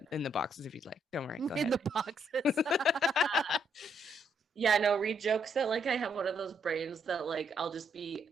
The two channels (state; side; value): normal; both; correlation 0.74